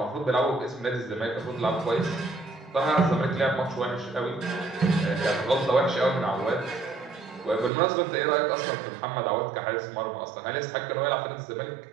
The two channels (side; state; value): left; drops out; at 7.7 s